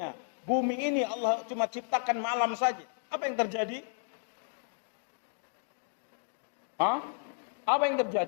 bumi ini Allah cuma ciptakan malam saja, apa yang terjadi? Apa yang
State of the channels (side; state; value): right; silent; digital silence